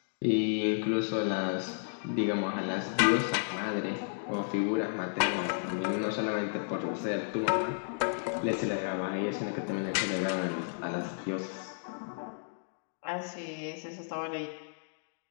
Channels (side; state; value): right; silent; digital silence